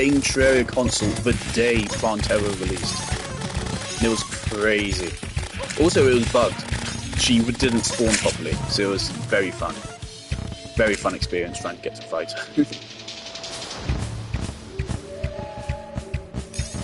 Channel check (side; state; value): both; identical; correlation 1.00